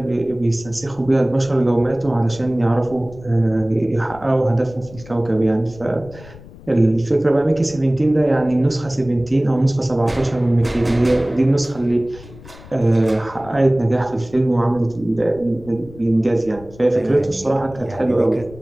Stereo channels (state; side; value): noise; left; rumble, 19 dB below the sound